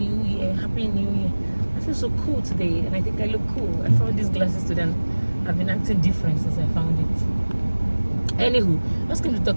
Year, Happy New Year. I feel so cool today and I think I look cool. I found these glasses today and I've been acting different since I found it. Anywho, I was going to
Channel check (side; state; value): both; inverted; correlation -1.00